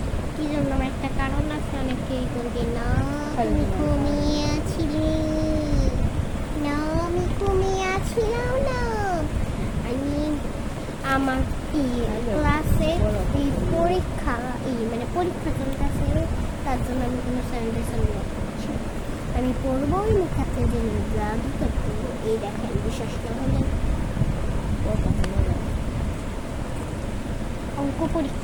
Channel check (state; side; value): identical; both; correlation 1.00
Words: কি জন্য? আমার একটা কারণ আছে। অনেকেই বলবে না তুমি ঘুমিয়ে আছিলে, না আমি ঘুমিয়ে আছিলাম না। আমি আমার ক্লাসে এই পরীক্ষা মানে পরীক্ষা চলতেছে, তার জন্য আমি কোনো স্যানিটেশন ব্লগ করছি। আমি পড়বো ওই মুখাতে যে ব্লগই করতে। এই দেখেন, বিশ্বাস না হলে অঙ্ক